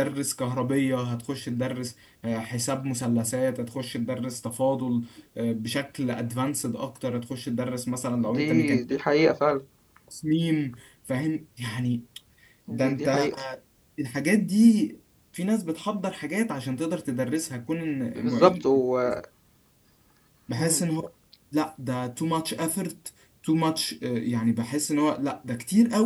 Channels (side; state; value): both; identical; correlation 1.00